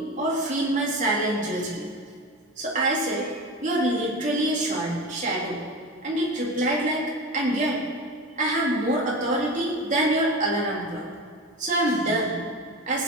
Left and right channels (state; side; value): normal; both; correlation 0.27